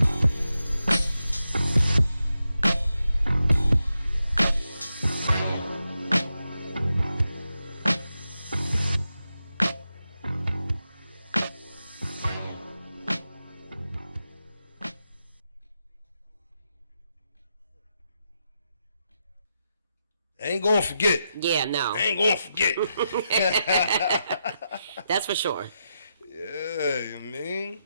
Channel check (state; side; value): inverted; both; correlation -0.86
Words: ain't gonna forget. Yeah, no. I ain't gonna forget. That's for sure. Yeah, I mean,